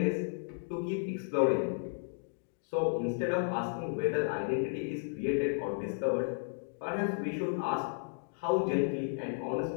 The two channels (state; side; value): silent; right; digital silence